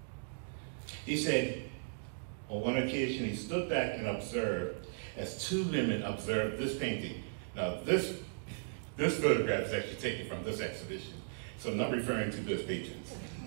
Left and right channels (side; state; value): left; silent; digital silence